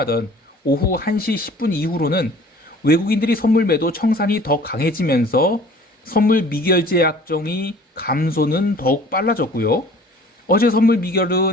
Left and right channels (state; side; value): normal; both; correlation 0.49